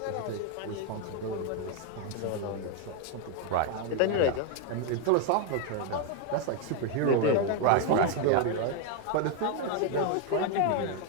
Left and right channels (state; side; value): different; both; correlation 0.01